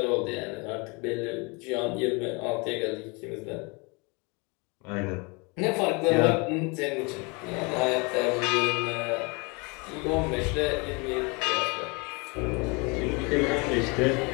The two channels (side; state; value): right; quieter; 29.6 dB